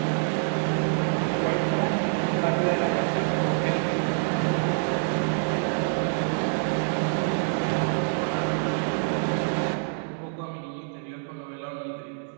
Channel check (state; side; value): silent; left; 61 dB below the other